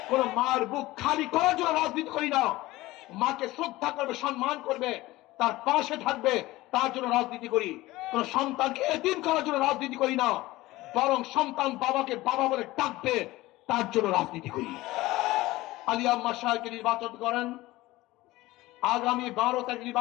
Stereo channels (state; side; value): quieter; right; 18.5 dB